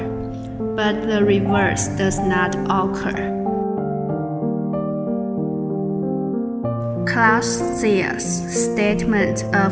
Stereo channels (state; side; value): identical; both; correlation 1.00